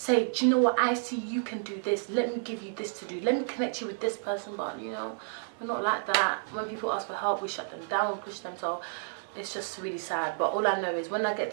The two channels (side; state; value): left; silent; digital silence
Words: do you know what, I see you can do this, let me give you this to do, let me connect you with this person. But, you know, we're not like that. When people ask for help, we shut them down and push them. So it's just really sad. But all I know is when I